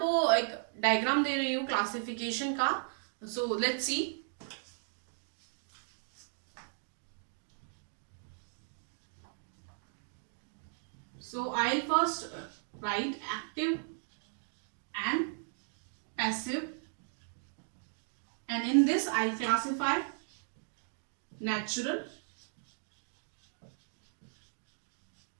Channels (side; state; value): left; silent; digital silence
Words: एक डायग्राम दे रही हूँ क्लासिफिकेशन का। So let's see. So I'll first write active and passive, and in this I'll classify natural